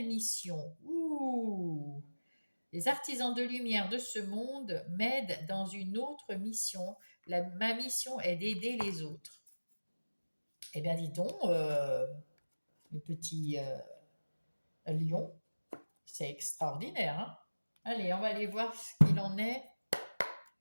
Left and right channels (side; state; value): both; inverted; correlation -1.00